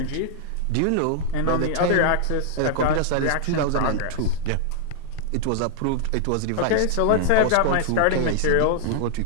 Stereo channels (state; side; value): different; both; correlation -0.01